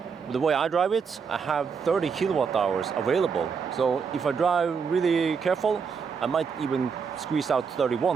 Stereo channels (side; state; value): left; quieter; 6.0 dB